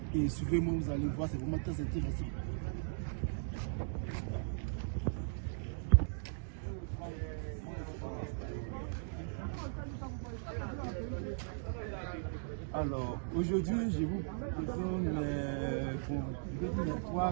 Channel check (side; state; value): left; silent; digital silence